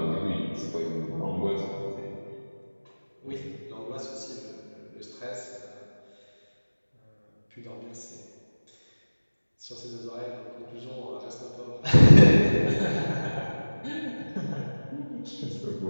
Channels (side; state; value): both; inverted; correlation -1.00